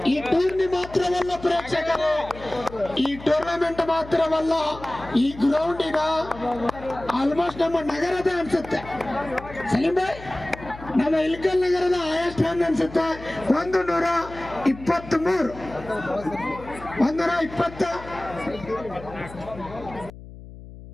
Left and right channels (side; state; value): left; noise; hum, 16 dB below the sound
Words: ಈ ಟೂರ್ನಿ ಮಾತ್ರವಲ್ಲ ಪ್ರೇಕ್ಷಕರೇ, ಈ ಟೂರ್ನಮೆಂಟ್ ಮಾತ್ರವಲ್ಲ, ಈ ಗ್ರೌಂಡಿನ ಆಲ್ಮೋಸ್ಟ್ ನಮ್ಮ ನಗರದ ಅನ್ಸುತ್ತೆ. ಸಲೀಂ ಭಾಯ್ ನಮ್ಮ ಇಲ್ಕಲ್ ನಗರದ ಹೈಯೆಸ್ಟ್ ರನ್ ಅನ್ಸುತ್ತೆ. 123. 120.